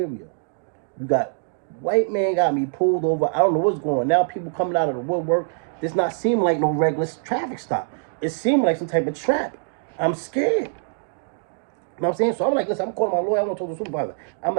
You got white man got me pulled over. I don't know what's going on. Now people coming out of the woodwork. This not seem like no regular traffic stop. It seemed like some type of trap. I'm scared. You know what I'm saying? So I'm like, listen, I'm calling my lawyer. I want to talk to the supervisor. I'm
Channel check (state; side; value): silent; left; digital silence